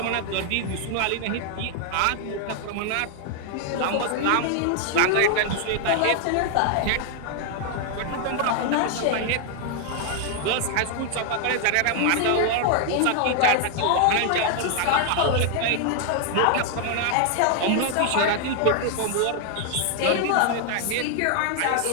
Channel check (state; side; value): different; both; correlation 0.00